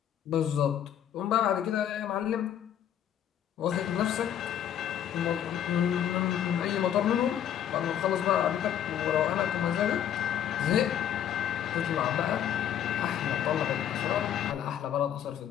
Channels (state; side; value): quieter; right; 9.9 dB